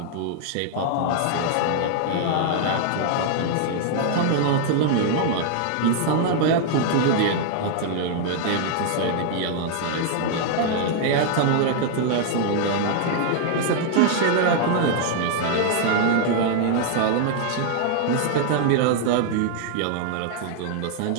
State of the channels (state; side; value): different; both; correlation 0.00